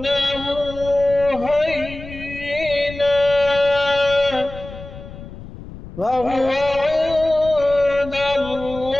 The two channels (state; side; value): noise; left; rumble, 14 dB below the sound